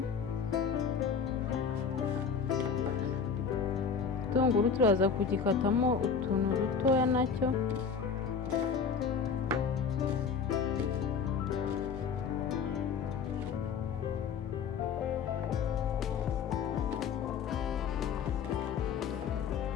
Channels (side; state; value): right; quieter; 6.1 dB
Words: Igitunguru turaza kugikatamo utuntu dutoya nacyo.